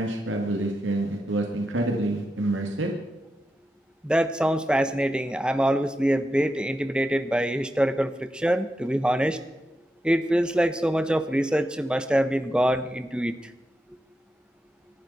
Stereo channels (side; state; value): both; normal; correlation 0.87